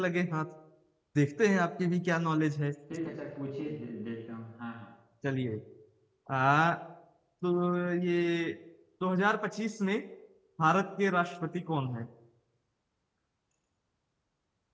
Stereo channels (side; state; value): both; identical; correlation 1.00